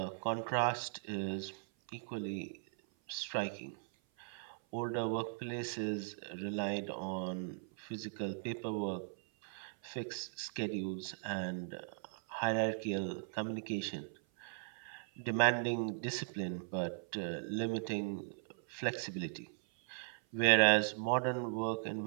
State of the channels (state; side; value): silent; left; 52 dB below the other